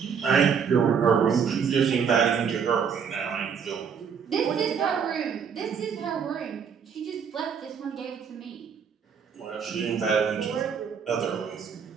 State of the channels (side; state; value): left; quieter; 6.8 dB